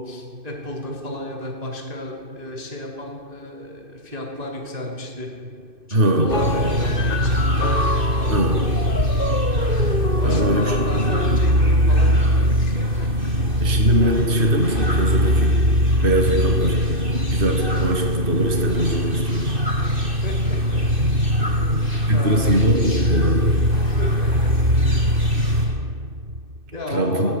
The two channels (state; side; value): late; left; 2.6 ms